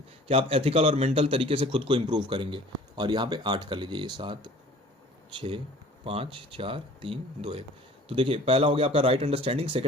कि आप एथिकल और मेंटल तरीके से खुद को इंप्रूव करेंगे। और यहाँ पे 8 कर लीजिए, ये 7 6 5 4 3 2 1। तो देखिए पहला हो गया आपका right understanding,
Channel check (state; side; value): normal; both; correlation 0.48